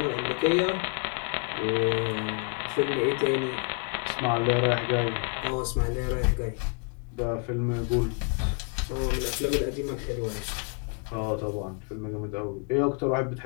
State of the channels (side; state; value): right; quieter; 38.8 dB